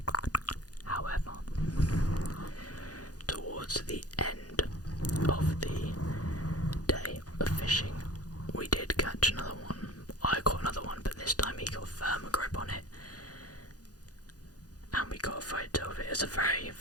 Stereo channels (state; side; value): late; right; 0.68 ms